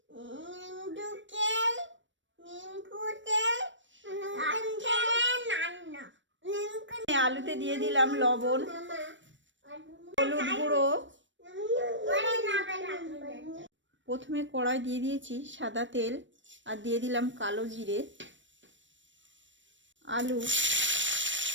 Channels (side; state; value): left; late; 0.54 ms